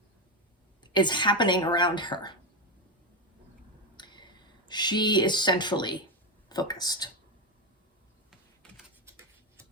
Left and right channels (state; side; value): normal; both; correlation 0.09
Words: is happening around her. She is centrally focused.